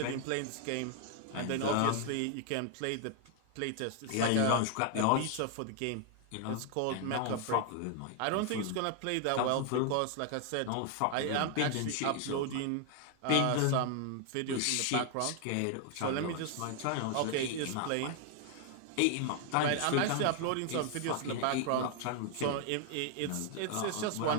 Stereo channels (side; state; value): both; different; correlation 0.00